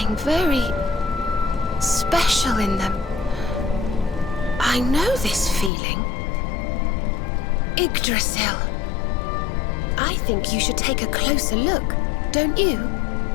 very special in them. I know this feeling. Yggdrasil. I think you should take a closer look, don't you?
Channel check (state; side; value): drops out; right; at 5.7 s